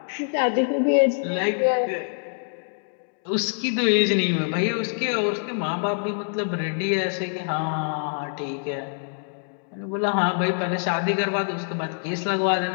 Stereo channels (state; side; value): silent; right; 62 dB below the other